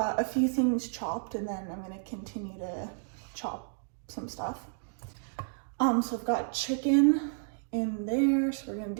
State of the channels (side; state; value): left; silent; digital silence